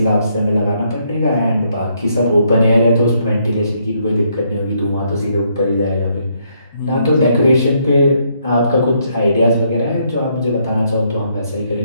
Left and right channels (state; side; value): inverted; both; correlation -0.73